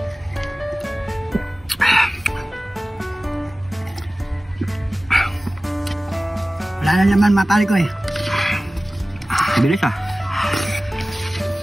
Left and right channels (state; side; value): normal; both; correlation 0.97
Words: Wala na naman mga pare ko eh. Bilis ah.